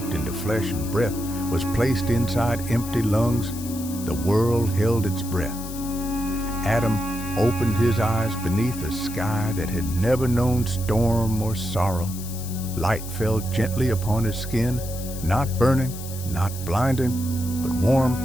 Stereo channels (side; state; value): left; noise; hiss, 12 dB below the sound